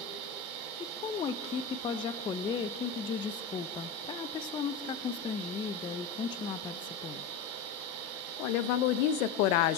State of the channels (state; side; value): quieter; right; 5.4 dB